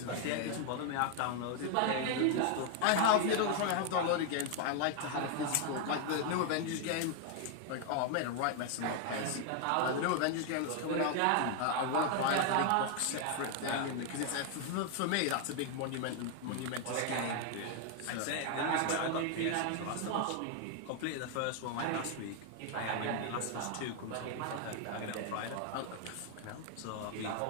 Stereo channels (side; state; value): both; different; correlation 0.00